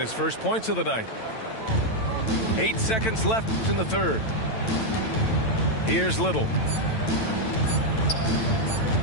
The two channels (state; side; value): late; right; 9.0 ms